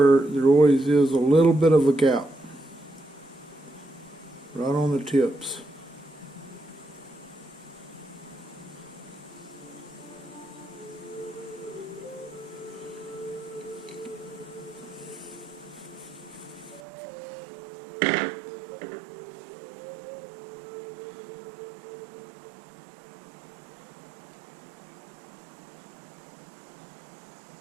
there always is a little bit of a gap, right on the tips.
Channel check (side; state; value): left; drops out; at 16.8 s